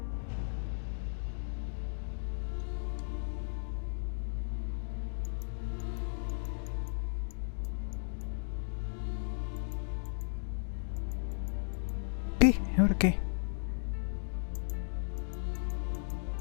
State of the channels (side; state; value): right; silent; digital silence